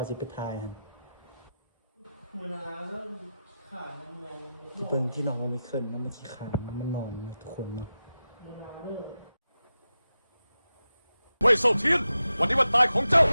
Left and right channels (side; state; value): both; inverted; correlation -0.91